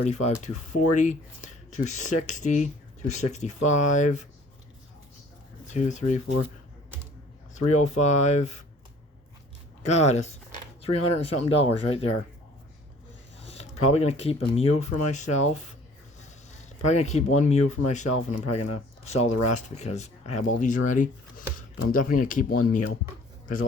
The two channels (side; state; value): both; normal; correlation 0.53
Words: 240, 260, 265, 2, 3, 4, 305. God, it's $300 and something right there. Probably gonna keep a Mew for myself. Probably gonna keep one Mew for myself, and I'm probably gonna sell the rest because I have all these already. But I'm definitely gonna keep one Mew because the